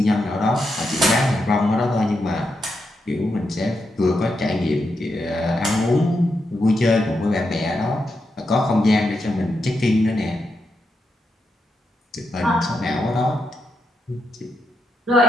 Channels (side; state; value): both; normal; correlation 0.84